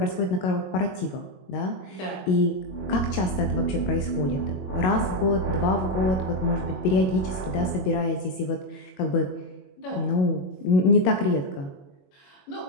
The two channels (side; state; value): right; late; 22 ms